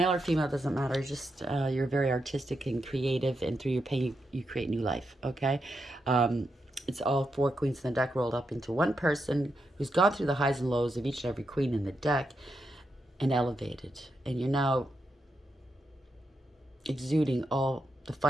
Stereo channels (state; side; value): normal; both; correlation 0.84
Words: or female, doesn't matter. Just you're very artistic and creative, and through your pain, you create new life. Okay? It's all 4 queens in the deck rolled up into one person who's gone through the highs and lows of each and every queen in the deck and elevated. And you're now exuding all the